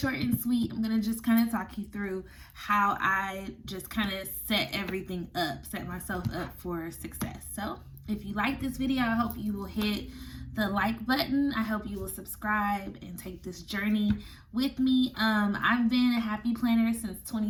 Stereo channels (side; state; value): both; identical; correlation 1.00